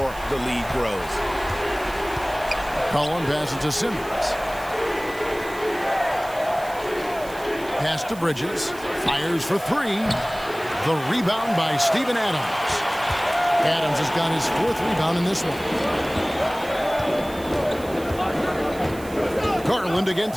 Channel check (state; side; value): noise; right; hiss, 19 dB below the sound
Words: the lead grows. Cullen passes to Simmons. Pass to Bridges. Fires for 3. The rebound by Steven Adams. Adams has got his 4th rebound in this one. Garland